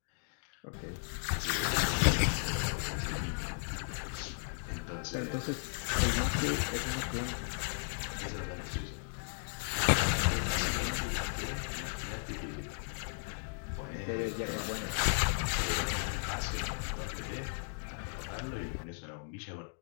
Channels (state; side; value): silent; right; digital silence